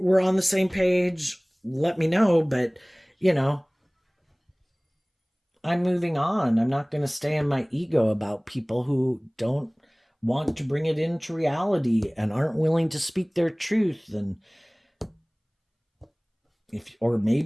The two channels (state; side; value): identical; both; correlation 1.00